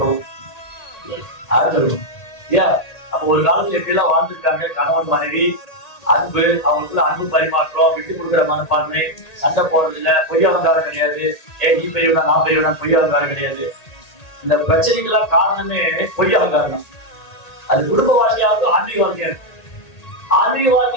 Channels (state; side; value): late; right; 1.9 ms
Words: இல்லையா? அப்ப ஒரு காலத்துல எப்படி எல்லாம் வாழ்ந்துருக்காங்க, கணவன் மனைவி அன்பு, அவங்களுக்குள்ள அன்பு பரிமாற்றம், விட்டு கொடுக்குற மனப்பான்மை, சண்டை போடுறது இல்ல, பொய் அலங்காரம் கிடையாது. ஏன் நீ பெரியவனா நான் பெரியவனா பொய் அலங்காரம் கிடையாது. இந்த பிரச்சனைகள்லாம் காரணமே பொய் அலங்காரம் தான். அது குடும்ப வாழ்க்கையாவது ஆன்மீக வாழ்க்கையா இருக்கு. ஆன்மீக